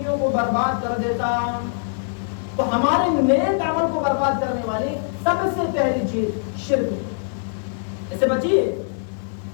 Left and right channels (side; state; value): right; silent; digital silence